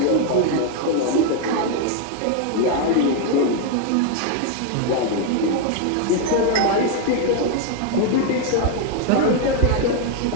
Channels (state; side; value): different; both; correlation 0.01